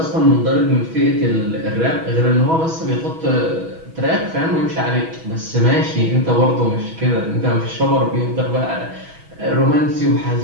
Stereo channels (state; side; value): late; left; 6.2 ms